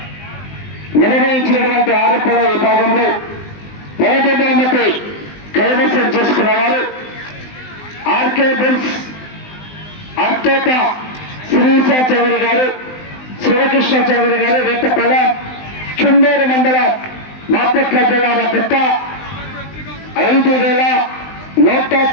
నిర్వహించినటువంటి ఆరోపణ విభాగంలో మొదటి బహుమతి కైవసం చేసుకున్నవారు ఆర్కే బుల్స్ అత్తోట శ్రీశ చౌదరి గారు, శివకృష్ణ చౌదరి గారు, వేటపల్లి చుండూరు మండలం బాపట్ల జిల్లా వద్ద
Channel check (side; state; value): right; late; 19 ms